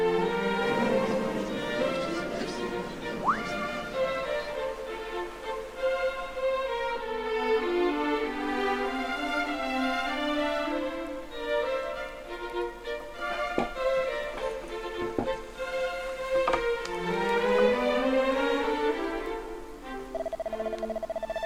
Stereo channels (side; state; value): both; identical; correlation 1.00